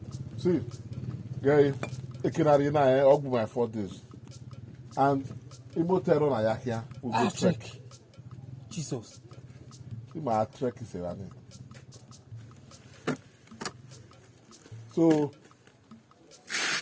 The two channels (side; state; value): both; identical; correlation 1.00